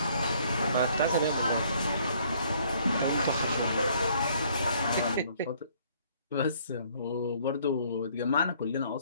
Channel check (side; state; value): both; inverted; correlation -0.62